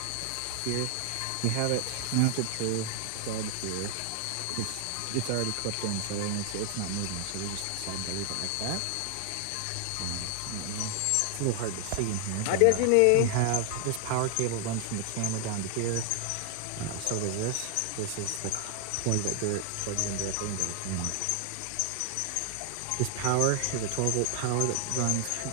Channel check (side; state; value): both; different; correlation 0.00